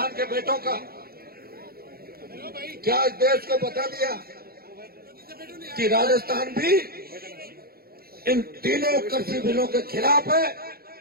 के बेटों का, क्या इस देश को बता दिया कि राजस्थान भी इन तीनों कृषि बिलों के खिलाफ है।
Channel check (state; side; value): late; left; 0.44 ms